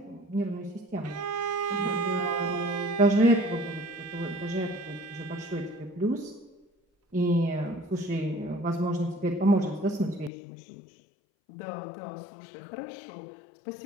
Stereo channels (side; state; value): right; drops out; at 10.3 s